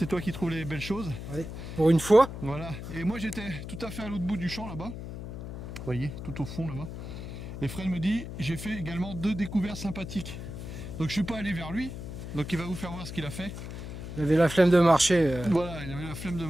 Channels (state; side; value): noise; left; hum, 9 dB below the sound